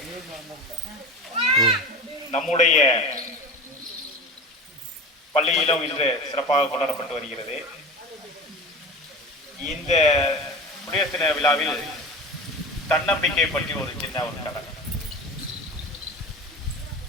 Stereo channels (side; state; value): both; normal; correlation 0.30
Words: நம்முடைய பள்ளியிலும் இன்று சிறப்பாக கொண்டாடப்பட்டு வருகிறது. இந்த குடியரசு தின விழாவில் தன்னம்பிக்கை பற்றி ஒரு சின்ன ஒரு கதை.